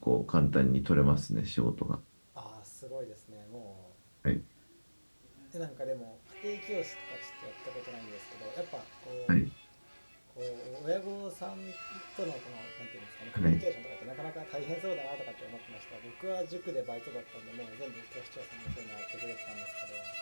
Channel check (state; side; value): inverted; both; correlation -1.00